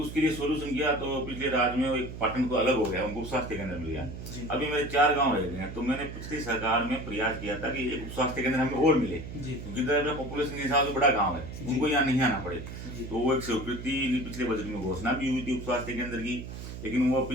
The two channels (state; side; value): noise; right; hum, 10 dB below the sound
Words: लिए सोल्यूशन किया, तो पिछले राज्य में एक पाटन को अलग हो गया, उनको उप स्वास्थ्य केंद्र मिल गया। जी अभी मेरे 4 गांव रह गए हैं, तो मैंने पिछली सरकार में प्रयास किया था कि एक उप स्वास्थ्य केंद्र हमें और मिले, जी क्योंकि पॉपुलेशन के हिसाब से बड़ा गाँव है, उनको यहाँ नहीं आना पड़े। जी तो वो एक स्वीकृति पिछले बजट में घोषणा भी हुई थी उप स्वास्थ्य केंद्र की, लेकिन वो